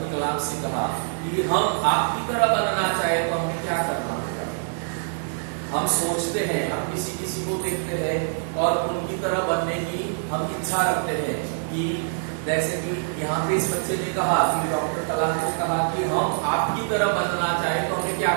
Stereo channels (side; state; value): left; silent; digital silence